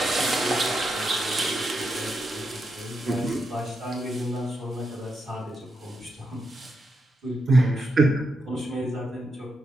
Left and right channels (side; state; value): both; normal; correlation 0.83